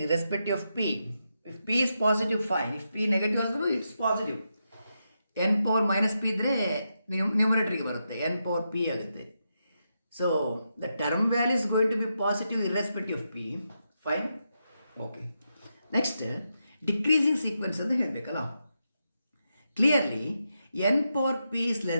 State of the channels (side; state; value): both; inverted; correlation -0.85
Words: Irrespective of p. If p is positive, fine. If p negative also, it's positive. n power minus p ಇದ್ರೆ ನ್ಯೂಮರೇಟರ್ಗೆ ಬರುತ್ತೆ. n power p ಆಗುತ್ತೆ. So the term value is going to be positive irrespective of p. Fine? Okay. Next, decreasing sequence ಅಂತ ಹೇಳಬೇಕಲ್ಲ. Clearly, n power p is